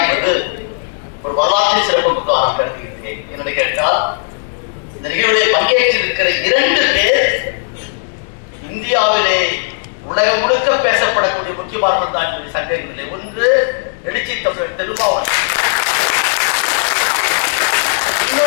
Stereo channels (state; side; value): silent; right; digital silence